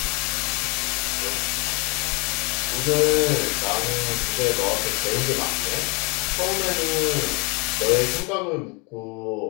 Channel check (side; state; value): right; quieter; 29.6 dB